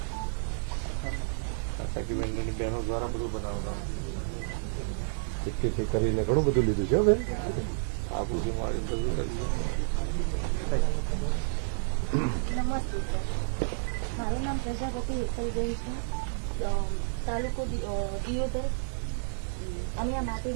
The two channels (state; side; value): silent; left; digital silence